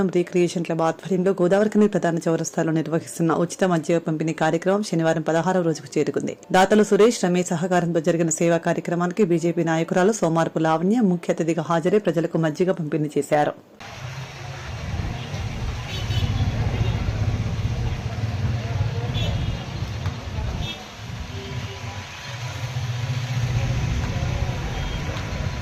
రీక్రియేషన్ క్లబ్ ఆధ్వర్యంలో గోదావరిఖని ప్రధాన చౌరస్తాలో నిర్వహిస్తున్న ఉచిత మద్య పంపిణీ కార్యక్రమం శనివారం 16వ రోజుకు చేరుకుంది. దాతలు సురేష్, రమేష్ సహకారంతో జరిగిన సేవా కార్యక్రమానికి బీజేపీ నాయకురాలు సోమారపు లావణ్య ముఖ్య అతిథిగా హాజరై ప్రజలకు మజ్జిగ పంపిణీ చేశారు.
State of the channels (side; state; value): both; identical; correlation 1.00